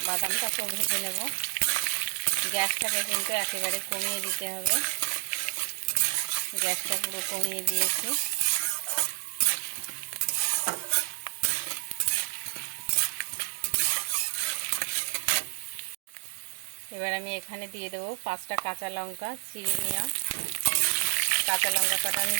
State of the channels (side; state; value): left; silent; digital silence